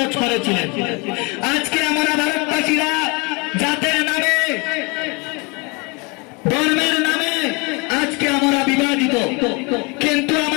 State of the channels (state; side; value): quieter; right; 28.5 dB